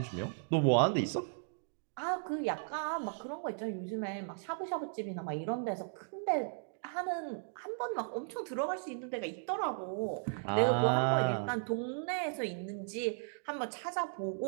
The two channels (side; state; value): left; silent; digital silence